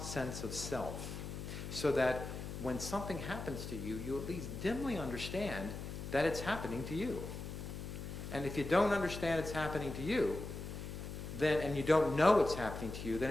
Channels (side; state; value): left; noise; hum, 7 dB below the sound